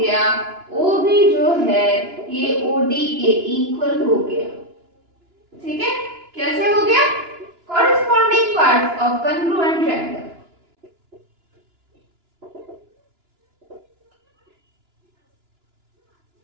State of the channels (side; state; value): left; late; 2.9 ms